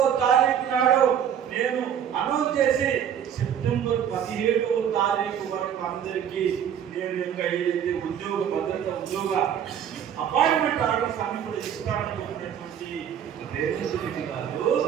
తారీఖు నాడు నేను అనౌన్స్ చేసి సెప్టెంబర్ 17వ తారీఖు వరకు అందరికీ నేను ఇంకా ఏదైతే ఉద్యోగ భద్రత ఉద్యోగ అపాయింట్మెంట్ ఆర్డర్స్ అన్ని కూడా ఇస్తాననుకున్నటువంటి రేవంత్ రెడ్డి గారు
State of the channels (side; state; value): left; quieter; 8.9 dB